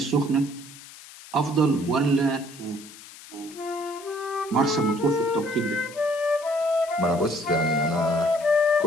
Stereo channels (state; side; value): noise; left; hiss, 18 dB below the sound